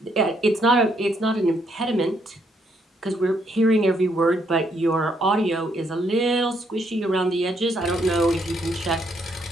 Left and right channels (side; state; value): both; normal; correlation 0.72